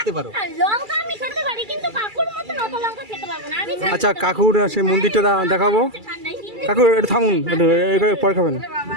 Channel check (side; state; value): left; late; 2.3 ms